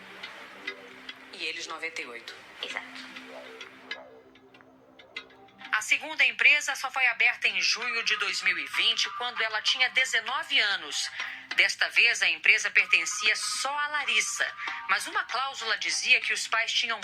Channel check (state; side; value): identical; both; correlation 1.00